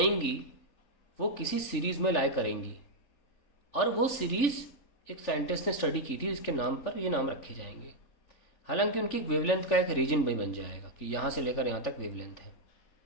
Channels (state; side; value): late; right; 3.4 ms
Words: वो किसी सीरीज़ में लाई करेंगी, और वो सीरीज़ एक साइंटिस्ट ने स्टडी की थी, इसके नाम पर ये नाम रखे जाएंगे. हालांकि उनकी वेवलेंथ का एक रीजन भी बन जाएगा कि यहाँ से लेकर यहाँ तक वेवलेंथ है.